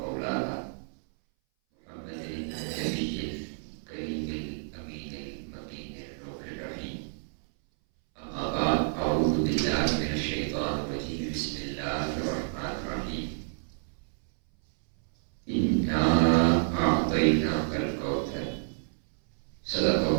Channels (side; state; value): left; silent; 58 dB below the other